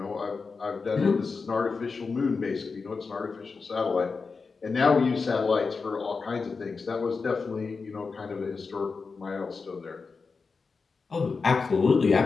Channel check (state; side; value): quieter; right; 4.7 dB